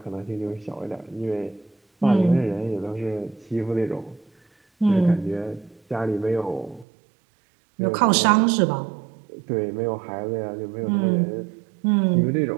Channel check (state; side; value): drops out; left; at 6.9 s